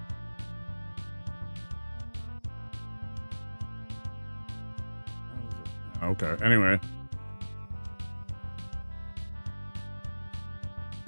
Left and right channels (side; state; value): both; inverted; correlation -1.00